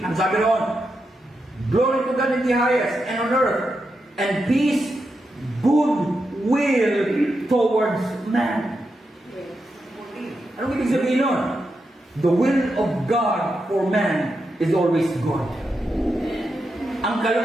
Ang sabi roon, glory to God in the highest, and on earth, and peace, goodwill towards man. Anong ibig sabihin nun? The will of God for man is always good. Ang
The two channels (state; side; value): normal; both; correlation 0.86